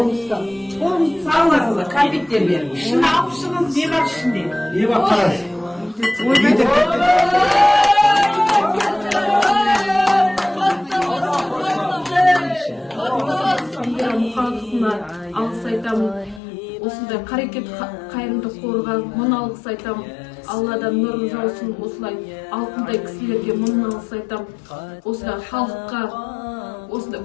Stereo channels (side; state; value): right; drops out; at 16.4 s